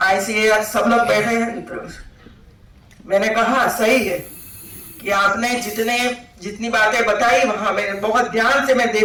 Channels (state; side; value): identical; both; correlation 1.00